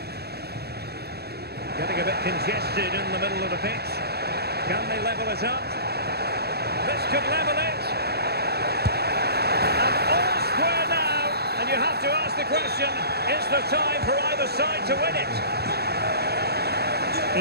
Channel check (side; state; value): left; late; 0.47 ms